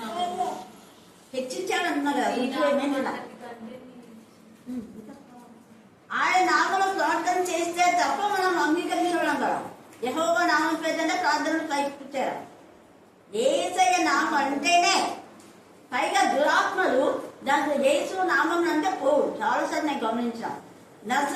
హెచ్చించాడు అన్నా కదా, రుజువు ఏమైనా? ఆయన నామంలో ప్రార్థన చేస్తే తప్ప మనం అంగీకరించడం కదా. యెహోవా నామం పేదంటే ప్రార్థనలు పైపుచ్చారు. యేసయ్య నామం అంటేనే పైగా దురాత్మలు దాంట్లో యేసు నామం అంటే పోవు. చాలాసార్లు నేను గమనించాను.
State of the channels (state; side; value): identical; both; correlation 1.00